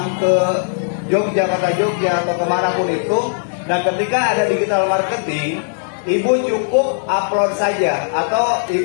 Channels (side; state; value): right; silent; digital silence